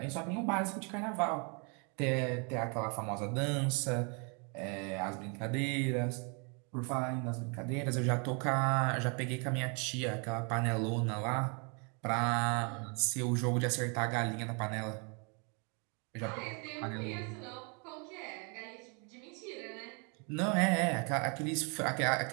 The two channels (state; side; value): quieter; left; 35.4 dB